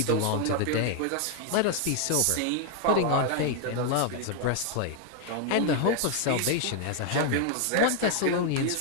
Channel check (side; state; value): both; different; correlation 0.00